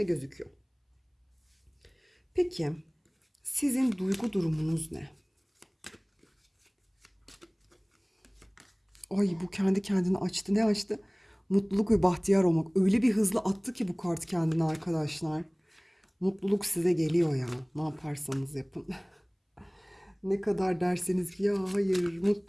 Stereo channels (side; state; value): both; identical; correlation 1.00